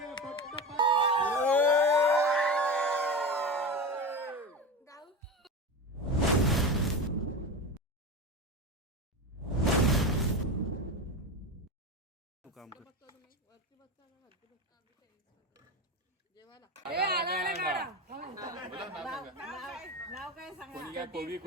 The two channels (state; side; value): normal; both; correlation 0.23